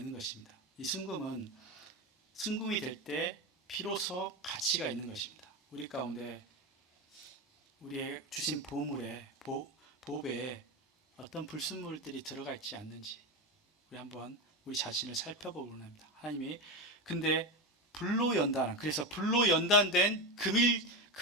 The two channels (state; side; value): normal; both; correlation 0.16